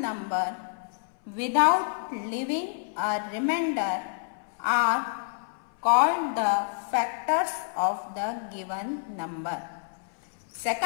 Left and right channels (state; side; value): silent; right; 59 dB below the other